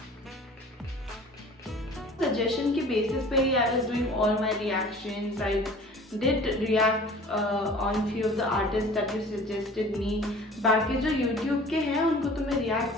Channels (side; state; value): both; normal; correlation 0.45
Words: सजेशन के बेसिस पे ही I was doing all my reactions. I did react on few of the artist that you suggested me. बाकी जो यूट्यूब के हैं उनको तो मैं